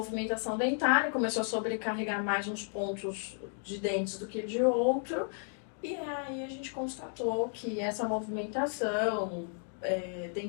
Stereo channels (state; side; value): silent; right; 56 dB below the other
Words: dentária, começou a sobrecarregar mais uns pontos de dentes do que de outro. E aí a gente constatou que essa movimentação